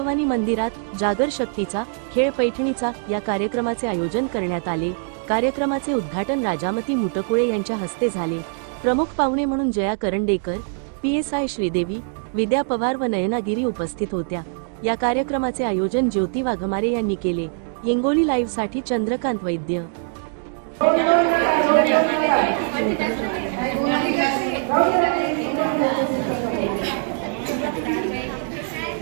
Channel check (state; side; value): silent; left; 62 dB below the other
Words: मंदिरात जागर शक्तीचा खेळ पैठणीचा या कार्यक्रमाचे आयोजन करण्यात आले। कार्यक्रमाचे उद्घाटन राजामती मुटकुळे यांच्या हस्ते झाले। प्रमुख पाहुणे म्हणून जया करंडेकर, PSI श्रीदेवी, विद्या पवार व नयना गिरी उपस्थित होत्या। या कार्यक्रमाचे आयोजन ज्योती वाघमारे यांनी केले। हिंगोली लाईव्ह साठी चंद्रकांत वैद्य।